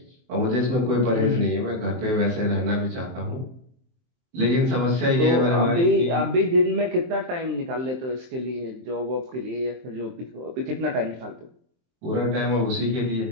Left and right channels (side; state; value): left; late; 23 ms